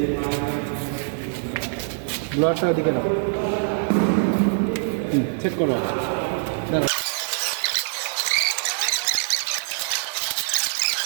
ব্লোয়ারটা ওদিকে নাও, সেট করো। দাঁড়াও,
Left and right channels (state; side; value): silent; left; digital silence